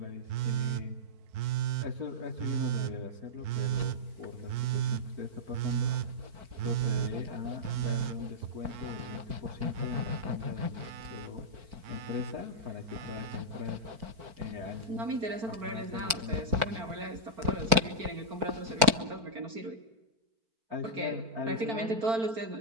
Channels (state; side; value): late; left; 4.5 ms